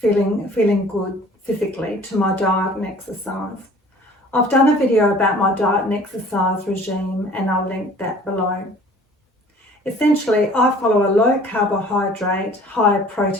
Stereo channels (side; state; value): both; normal; correlation 0.50